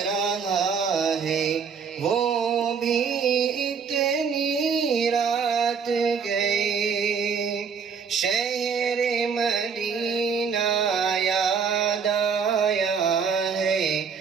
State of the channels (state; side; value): quieter; left; 6.1 dB